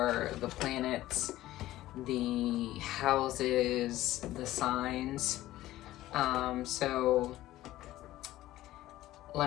the planets, the houses, the signs. So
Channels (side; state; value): right; quieter; 15.4 dB